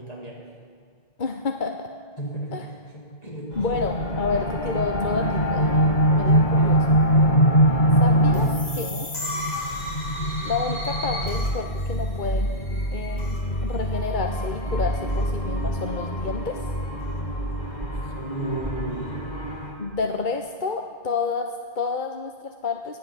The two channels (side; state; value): right; late; 2.0 ms